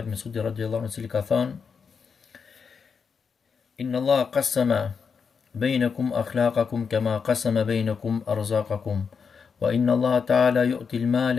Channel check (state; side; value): quieter; right; 5.9 dB